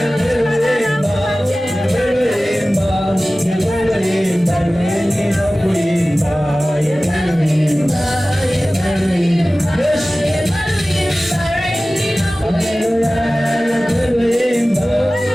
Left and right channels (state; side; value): normal; both; correlation 0.97